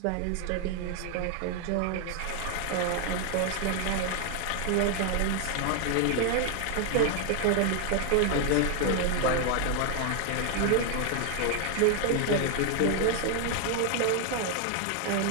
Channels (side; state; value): both; different; correlation 0.00